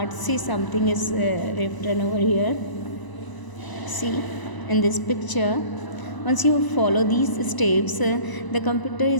See, something is written over here. See, in this picture, once you follow these steps, the computer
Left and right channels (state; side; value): late; right; 1.0 ms